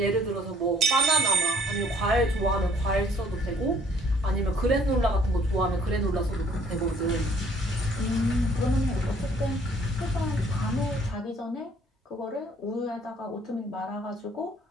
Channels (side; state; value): both; normal; correlation 0.60